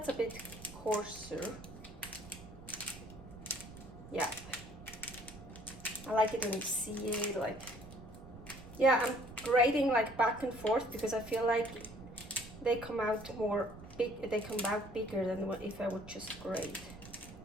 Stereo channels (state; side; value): noise; right; rumble, 16 dB below the sound